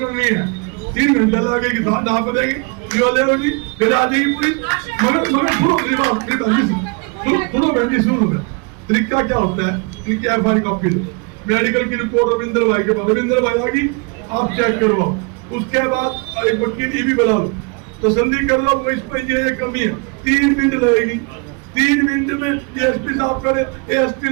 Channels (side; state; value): left; quieter; 32.8 dB